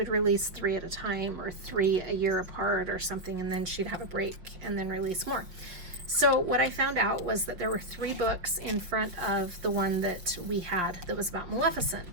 release 3 at a time, or 3 a year apart or something, and then she'd have a break and then release more. So what I found out was that there were 3 books in front of the one that we had that was about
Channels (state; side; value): late; left; 5.6 ms